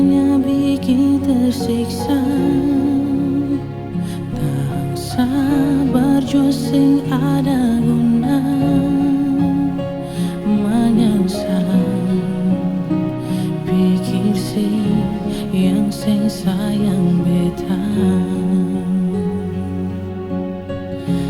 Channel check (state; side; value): identical; both; correlation 1.00